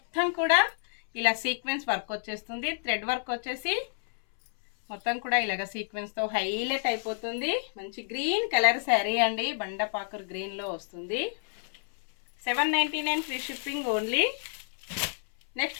కూడా ఇలా సీక్వెన్స్ వర్క్ వచ్చేస్తుంది. థ్రెడ్ వర్క్ వచ్చేసి మొత్తం కూడా ఇలాగ సీక్వెన్స్తో హైలైట్ అయిపోతుంది. మంచి గ్రీన్ కలర్ శారీ అండి. బండపాకర్ గ్రీన్లో వస్తుంది. 799 free shipping only.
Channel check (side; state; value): right; silent; 58 dB below the other